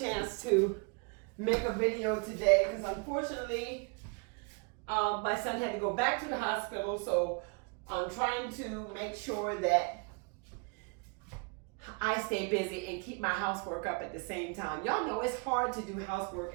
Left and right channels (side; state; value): left; quieter; 33.2 dB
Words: to make a video today because unfortunately my son had to go back to the hospital, so I'm trying to make sure that I stay busy and keep my housework up at the same time. Y'all know it's hard to do housework